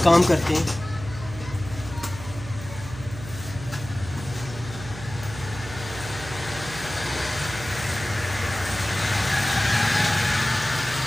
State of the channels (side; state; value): right; noise; hum, 12 dB below the sound